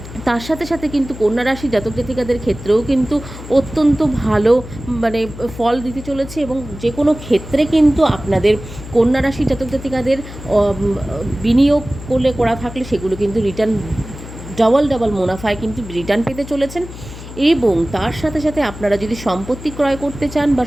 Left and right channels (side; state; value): left; noise; hum, 13 dB below the sound